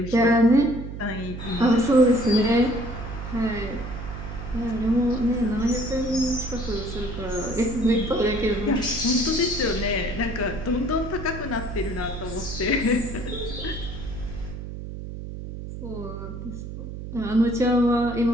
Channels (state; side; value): noise; right; hum, 9 dB below the sound